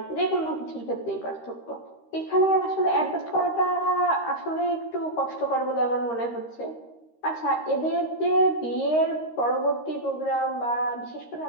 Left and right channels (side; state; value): right; late; 13 ms